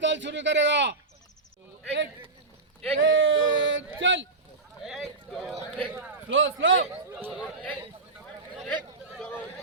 ताल शुरू करेगा. एक चल. Slow slow. एक दो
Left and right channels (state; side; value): quieter; left; 3.7 dB